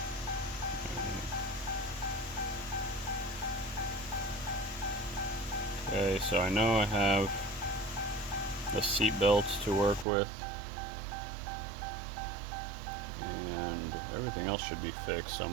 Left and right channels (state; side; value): drops out; left; at 10.1 s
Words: Okay, so I know I have the seat belts to work with, and everything else should be fixed, so